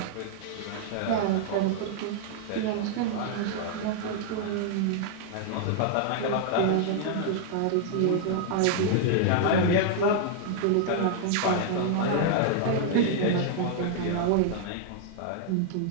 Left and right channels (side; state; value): both; different; correlation -0.01